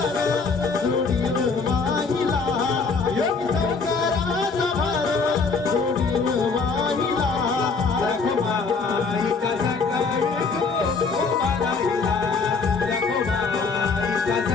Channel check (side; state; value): right; quieter; 4.6 dB